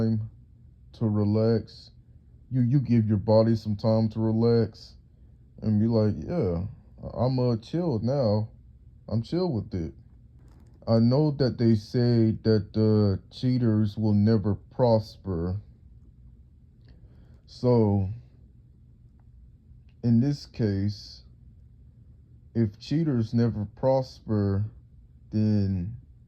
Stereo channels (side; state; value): both; identical; correlation 1.00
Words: to relax. You give your body some time to relax and be like, yeah, I'm chilled now. I'm chill with it. I know that they say that the cheaters will never prosper. So in this case, if cheaters never prosper, then